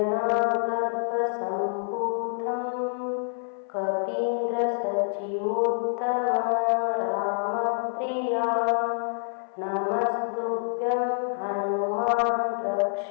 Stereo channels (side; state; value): right; silent; 57 dB below the other